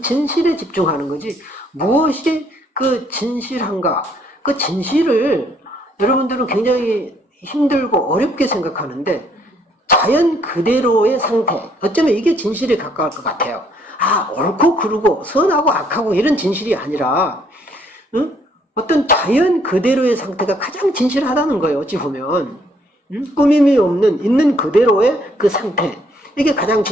진실에 집중하는 거지 무엇이 그 진실한가 그 진실을 여러분들은 굉장히 힘들고 어렵게 생각하는데 자연 그대로의 상태 어쩌면 이게 진실에 가까울 것 같아요. 아 옳고 그르고 선하고 악하고 이런 진실이 아니라 응? 어떤 자연 그대로의 상태가 가장 진실하다는 거예요. 어찌 보면 꾸밈이 없는 있는 그대로의 그 상태 이게 가장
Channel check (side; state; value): both; normal; correlation 0.67